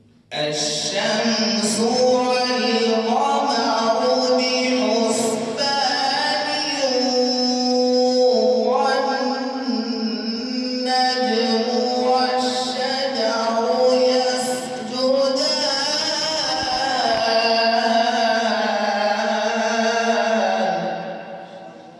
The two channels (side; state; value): both; identical; correlation 1.00